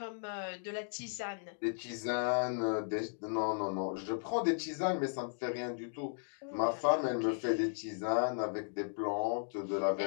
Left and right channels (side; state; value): right; silent; digital silence